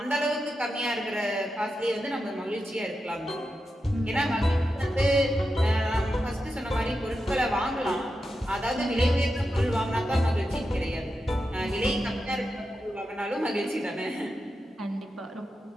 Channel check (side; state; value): both; normal; correlation 0.89